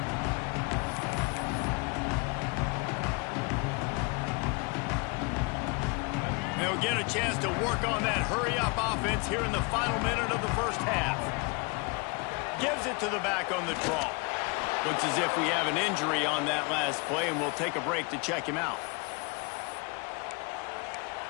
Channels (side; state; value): right; quieter; 30.3 dB